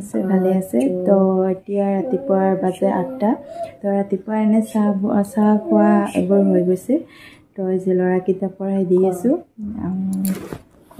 ভালে আছে। তো এতিয়া ৰাতিপুৱাৰ বাজে 8টা। তো ৰাতিপুৱা এনে চাহ খোৱা এবাৰ হৈ গৈছে। তো আজি ল'ৰাকেইটা পঢ়াই দি আছোঁ।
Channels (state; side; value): identical; both; correlation 1.00